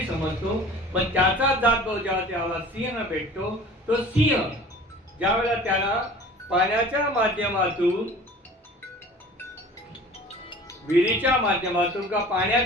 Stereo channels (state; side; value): normal; both; correlation 0.44